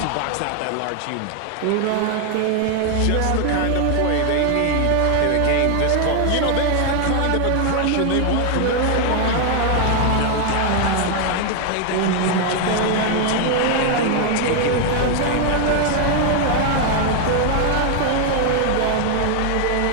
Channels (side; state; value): both; different; correlation 0.00